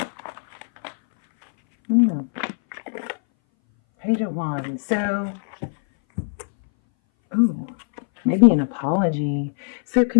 Page of Wands. So, maybe an apology. So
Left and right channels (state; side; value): silent; right; 61 dB below the other